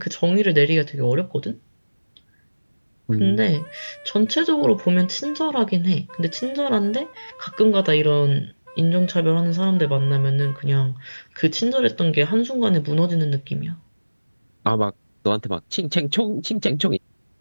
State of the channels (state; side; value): inverted; both; correlation -1.00